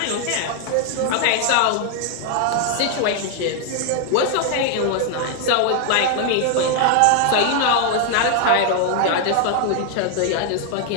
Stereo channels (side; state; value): both; different; correlation 0.00